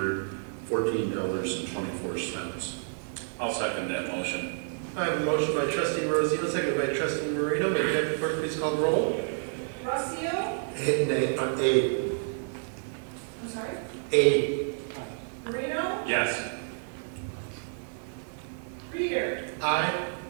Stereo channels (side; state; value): left; silent; digital silence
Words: I'll second that motion. I have a motion by trustee Rosio, seconded by trustee Marino. May the deputy clerk please call the roll? Rossio? I'm sorry? Marino? Yes. Reader? Aye.